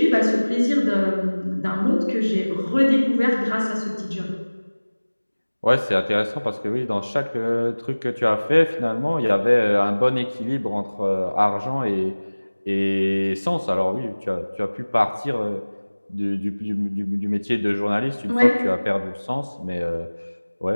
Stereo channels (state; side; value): inverted; both; correlation -1.00